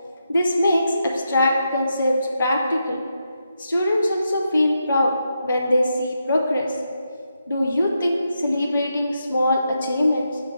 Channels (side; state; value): both; inverted; correlation -0.84